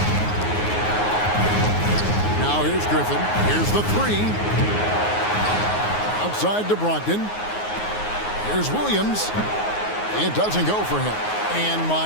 Now here's Griffin. Here's the three. Outside to Brogdon. Here's Williams. It doesn't go for him. And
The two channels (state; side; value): late; right; 9.5 ms